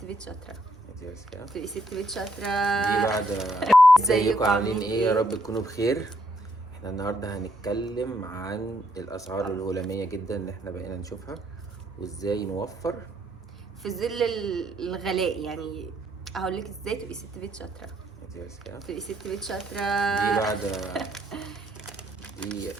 بيت شاطره. تبقي ست بيت شاطره دي بعد. ازيكم عاملين ايه؟ يا رب تكونوا بخير. احنا النهارده هنتكلم عن الاسعار الهلاميه جدا اللي احنا بقينا نشوفها وازاي نوفر في ظل الغلاء. يعني هقول لك ازاي تبقي ست بيت شاطره. تبقي ست بيت شاطره. دي بعد. دي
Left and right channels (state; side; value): normal; both; correlation 0.73